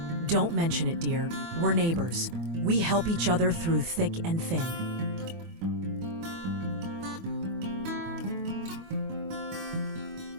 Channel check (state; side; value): late; left; 24 ms